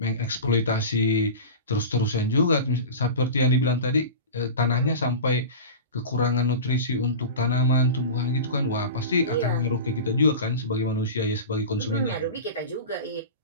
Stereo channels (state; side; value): inverted; both; correlation -0.30